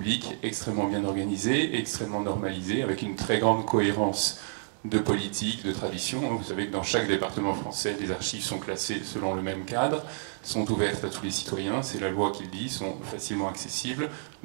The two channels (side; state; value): left; silent; digital silence